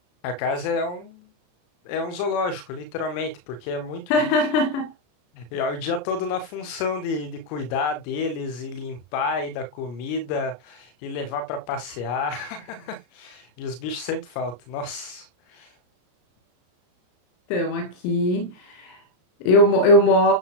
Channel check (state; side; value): late; right; 33 ms